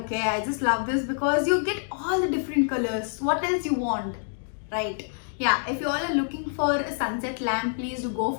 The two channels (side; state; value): right; silent; 60 dB below the other